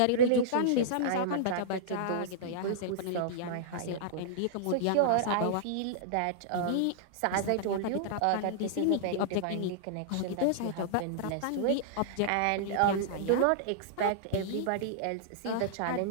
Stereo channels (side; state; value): both; different; correlation -0.02